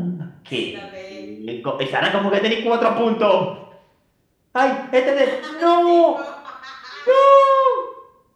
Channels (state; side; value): identical; both; correlation 1.00